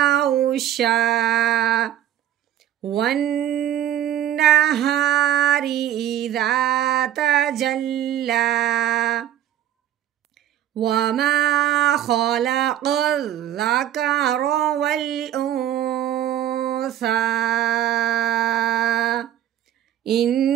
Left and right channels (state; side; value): quieter; left; 11.6 dB